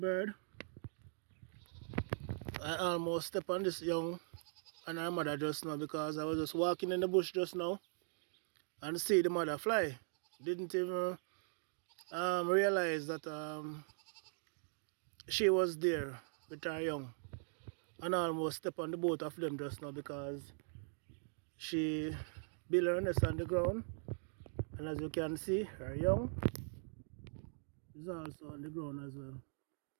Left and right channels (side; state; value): left; silent; digital silence